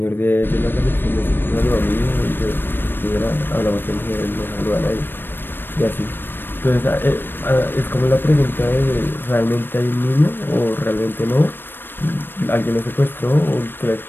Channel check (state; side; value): late; right; 0.097 ms